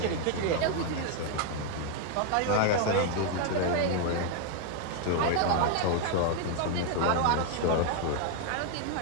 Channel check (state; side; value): different; both; correlation 0.00